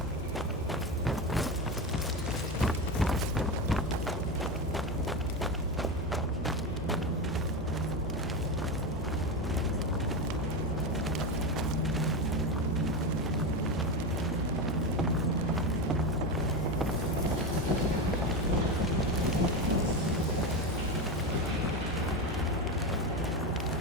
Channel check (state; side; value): normal; both; correlation 0.17